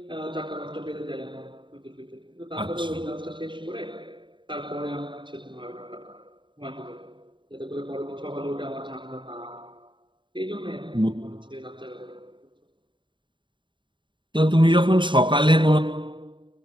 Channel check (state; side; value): late; left; 0.23 ms